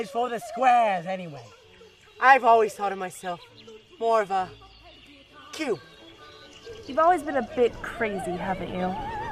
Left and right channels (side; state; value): both; identical; correlation 1.00